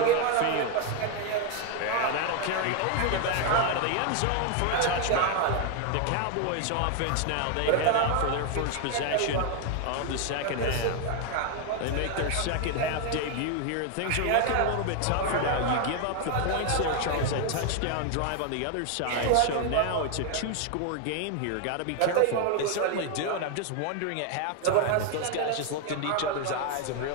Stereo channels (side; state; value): both; different; correlation 0.01